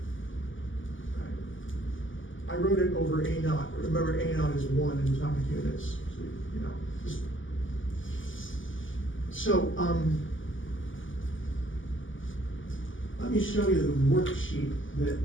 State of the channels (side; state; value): right; late; 0.57 ms